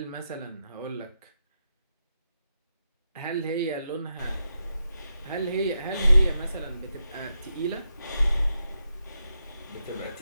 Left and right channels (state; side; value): inverted; both; correlation -0.86